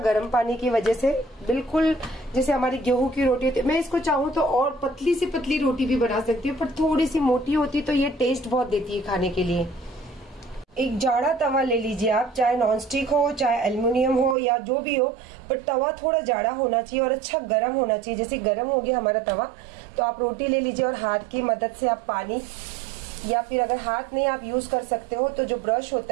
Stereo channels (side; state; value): left; drops out; at 14.4 s